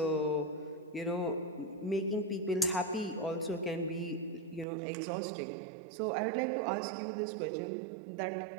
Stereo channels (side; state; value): left; drops out; at 4.7 s